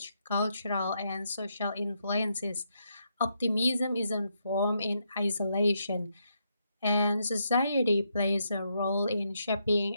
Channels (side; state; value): both; inverted; correlation -0.79